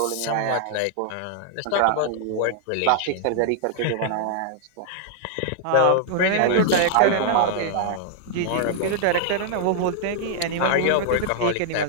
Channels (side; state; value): both; different; correlation -0.01